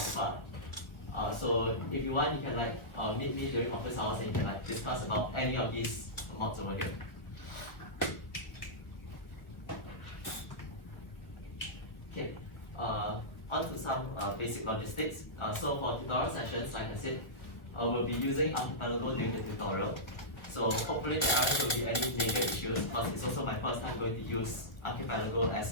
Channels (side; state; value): right; late; 1.4 ms